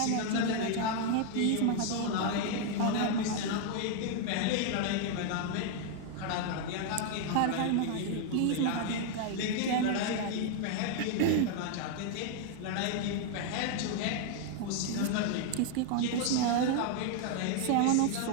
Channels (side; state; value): both; different; correlation 0.00